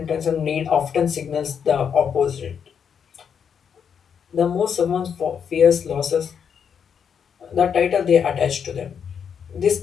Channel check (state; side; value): quieter; right; 7.4 dB